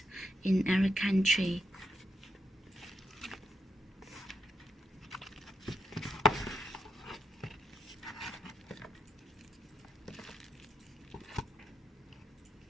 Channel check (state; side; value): normal; both; correlation 0.81